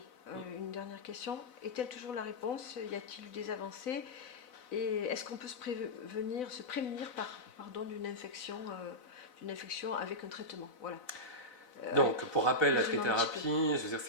une dernière question. Est-elle toujours la réponse? Y a-t-il eu des avancées? Et est-ce qu'on peut se prémunir d'une infection avec un traitement? Voilà. Donc, pour rappel, la trithérapie, je veux dire,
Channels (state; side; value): late; right; 4.0 ms